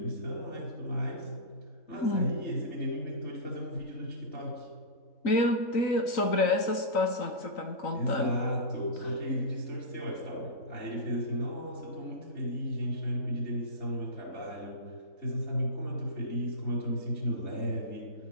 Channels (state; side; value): late; right; 3.9 ms